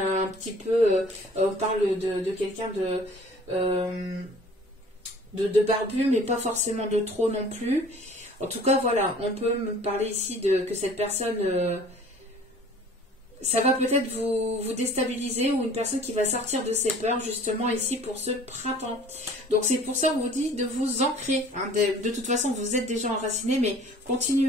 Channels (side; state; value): both; normal; correlation 0.49